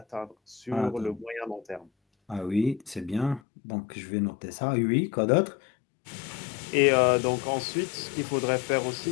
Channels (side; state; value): right; drops out; at 3.4 s